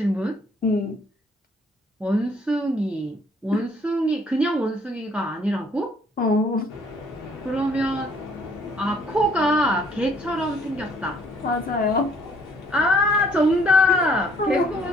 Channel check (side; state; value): both; normal; correlation 0.62